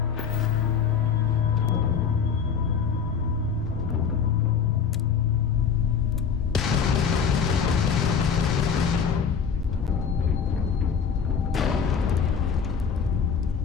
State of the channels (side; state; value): right; quieter; 6.6 dB